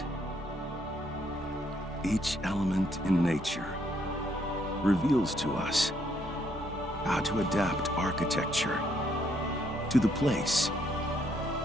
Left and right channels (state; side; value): normal; both; correlation 0.71